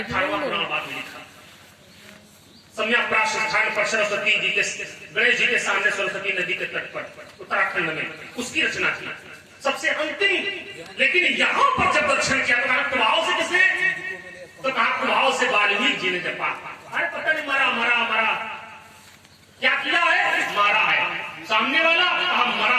सम्यक प्राप्त स्थान पर सरस्वती जी के गणेश जी के सामने सरस्वती नदी के तट पर उत्तराखंड में उसकी रचना की सबसे अंतिम। लेकिन यहाँ पर जब दर्शन किया तो प्रभाव से किसने, तो कहा प्रभाव से वाल्मीकि जी ने जपा। अरे पता नहीं मरा मरा मरा, क्या किया है, मारा है। सामने वाला कहा मरा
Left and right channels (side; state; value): both; identical; correlation 1.00